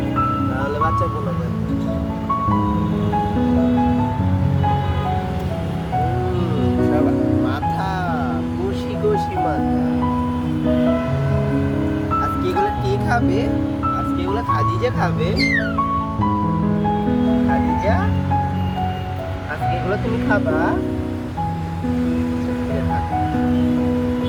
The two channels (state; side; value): identical; both; correlation 1.00